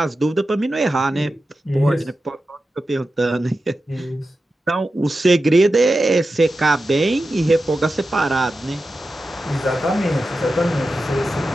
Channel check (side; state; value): both; normal; correlation 0.92